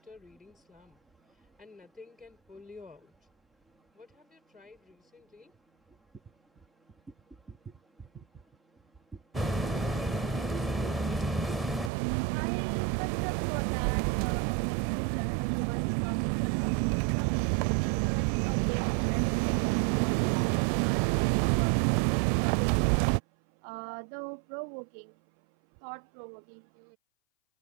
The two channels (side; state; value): left; drops out; at 11.9 s